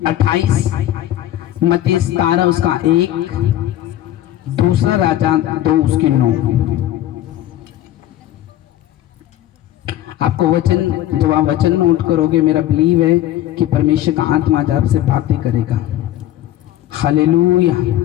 28, मत्ती 17 उसका 1, दूसरा राजा 2 उसकी 9। आपको वचन, जब आप वचन नोट करोगे, मेरा बिलीव है कि परमेश्वर का आत्मा आज आपसे बातें करेगा। Hallelujah,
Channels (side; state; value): right; quieter; 13.3 dB